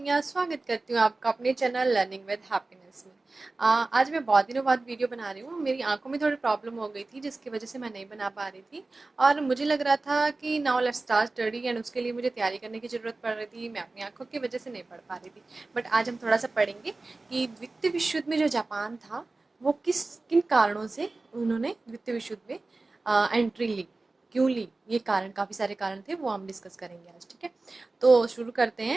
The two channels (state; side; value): quieter; left; 3.4 dB